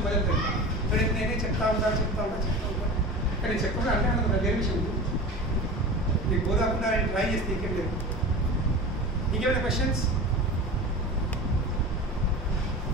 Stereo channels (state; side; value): normal; both; correlation 0.33